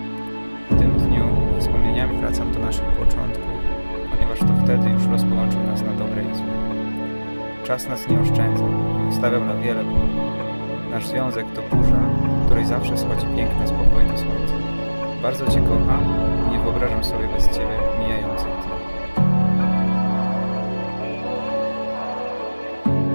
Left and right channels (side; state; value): both; inverted; correlation -1.00